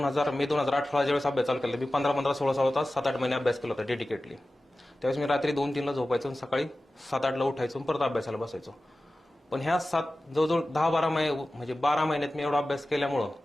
मे 2018 ज्यावेळेस अभ्यास चालू केला, मी 15-16 तास 7-8 महिने अभ्यास केला होता डेडिकेटली. त्यावेळेस मी रात्री 2-3ला झोपायचो आणि सकाळी 7-8ला उठायचो, परत अभ्यासाला बसायचो. पण ह्या जवळजवळ 10-12 महिने, म्हणजे 12 महिन्यात मी एवढा अभ्यास केल्यामुळं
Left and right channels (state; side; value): normal; both; correlation 0.95